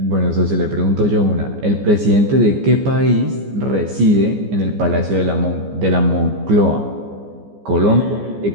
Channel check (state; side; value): late; left; 15 ms